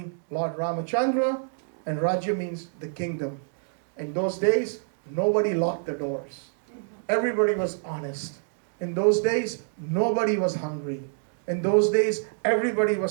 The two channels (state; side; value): silent; left; digital silence